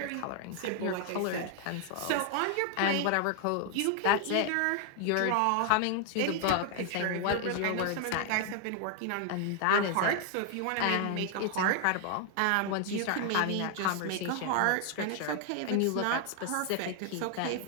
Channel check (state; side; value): different; both; correlation 0.00